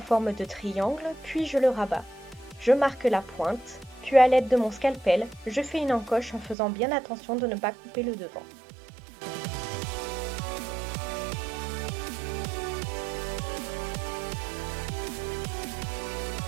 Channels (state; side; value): drops out; left; at 6.6 s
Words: de triangle, puis je le rabats. Je marque la pointe, puis à l'aide de mon scalpel, je fais une encoche en faisant bien attention de ne pas couper le devant.